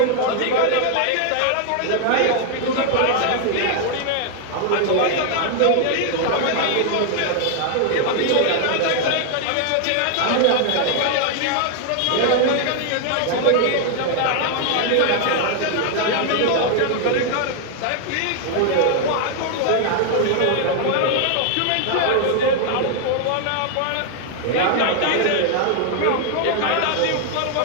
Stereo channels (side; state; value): both; different; correlation 0.00